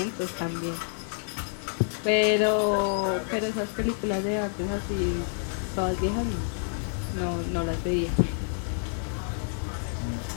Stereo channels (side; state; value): right; silent; digital silence